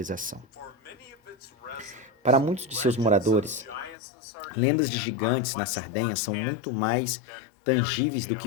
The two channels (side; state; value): right; drops out; at 4.0 s